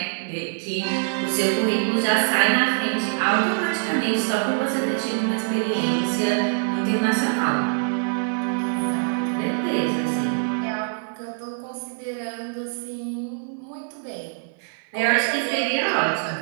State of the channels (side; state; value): left; silent; 57 dB below the other